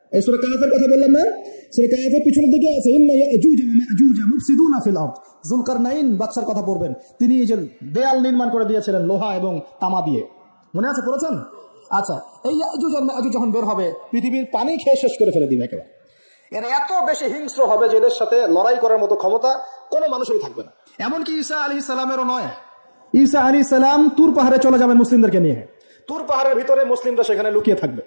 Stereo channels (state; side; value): inverted; both; correlation -1.00